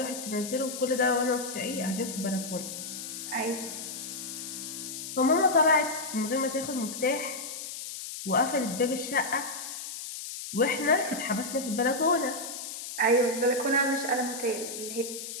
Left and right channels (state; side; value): noise; left; hiss, 8 dB below the sound